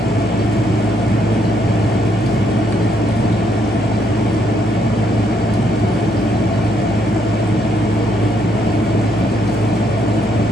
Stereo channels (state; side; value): normal; both; correlation 0.73